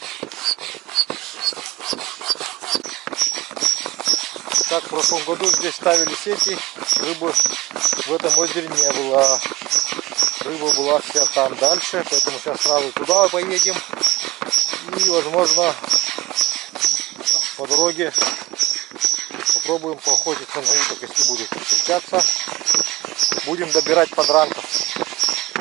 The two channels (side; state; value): left; quieter; 17.3 dB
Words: Так, в прошлом году здесь ставили сети, рыбы в этом озере не было. Рыба была вся там дальше, поэтому сейчас сразу туда поедем. И, возможно, по дороге попробуем поохотиться на уток, если будет встречаться. Будем добирать подранков.